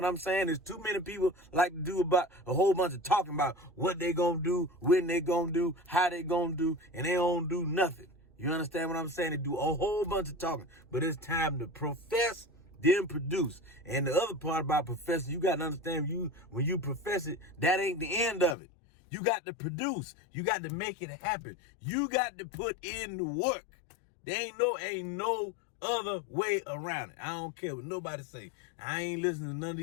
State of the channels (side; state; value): right; drops out; at 18.6 s